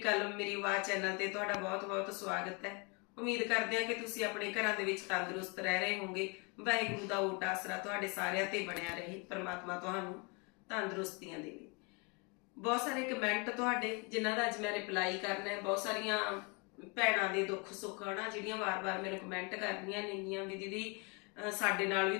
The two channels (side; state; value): right; quieter; 31.9 dB